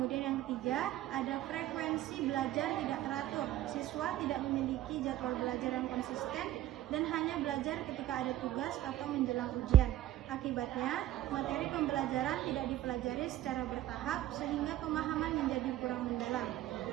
yang ketiga, ada frekuensi belajar tidak teratur. Siswa tidak memiliki jadwal belajar yang konsisten dan hanya belajar ketika ada tugas atau menjelang ujian. Akibatnya, materi pembelajaran tidak dipelajari secara bertahap sehingga pemahaman menjadi kurang mendalam.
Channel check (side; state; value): left; quieter; 13.5 dB